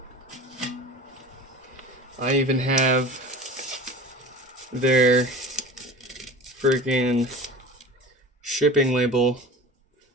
I even have their freaking shipping label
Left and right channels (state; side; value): normal; both; correlation 0.37